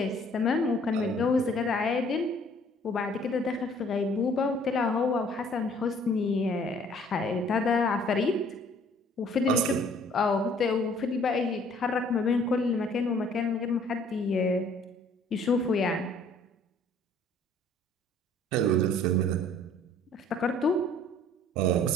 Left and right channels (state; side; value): normal; both; correlation 0.57